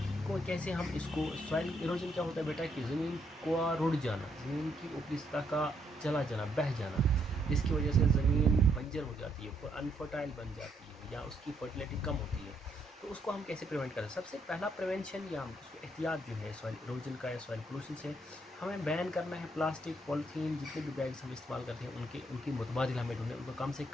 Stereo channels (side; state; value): both; normal; correlation 0.74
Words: को कैसे हम इसको, सॉइल इरोजन क्या होता है बेटा कि ज़मीन का रुड़ जाना, ज़मीन की ऊपरी सतह का चला जाना, बह जाना, जिसकी वजह से ज़मीन बंजर हो जाती है, अनफर्टाइल बन जाती है या उसकी फर्टिलिटी कम होती है। तो उसको हम कैसे प्रिवेंट करें? सबसे पहला प्रिवेंशन या उसको एहतियात जो है सॉइल इरोजन का या सॉइल पोल्यूशन से, हमें बैन करना है प्लास्टिक, पॉलीथीन, जितने भी बैग्स हम इस्तेमाल करते हैं उनकी मुतबादिल हमें ढूंढे, उनको कम से